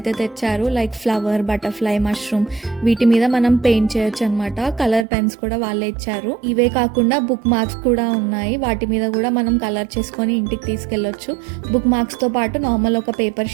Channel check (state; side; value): drops out; left; at 5.1 s